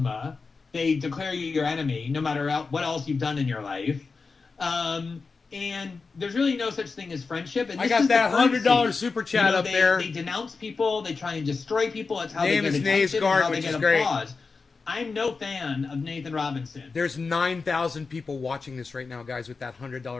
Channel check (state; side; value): quieter; right; 4.5 dB